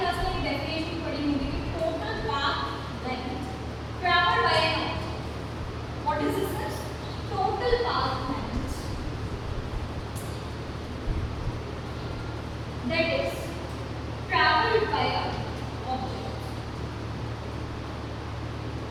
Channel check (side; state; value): both; identical; correlation 1.00